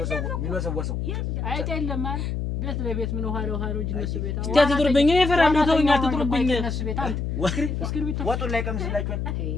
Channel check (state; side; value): noise; left; hum, 2 dB below the sound